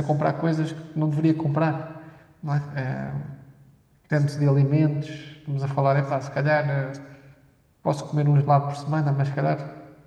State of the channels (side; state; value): both; identical; correlation 1.00